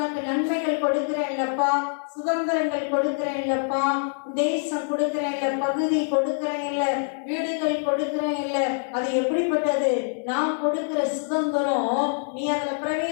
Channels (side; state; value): right; silent; digital silence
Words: நன்மைகள் கொடுக்கிறேன் இல்லப்பா, சுதந்திரங்கள் கொடுக்கிறேன் இல்லப்பா, தேசம் கொடுக்கிறேன் இல்ல, பகுதி கொடுக்கிறேன் இல்ல, வீடுகள் கொடுக்கிறேன் இல்ல. அது எப்படிப்பட்டது? நான் கொடுக்கிற சுதந்திரம் நீ அதுல